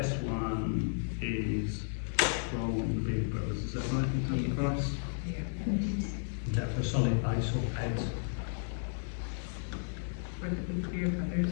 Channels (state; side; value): silent; right; digital silence